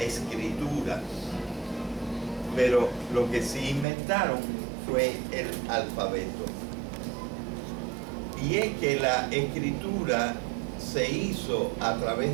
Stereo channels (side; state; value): left; drops out; at 3.9 s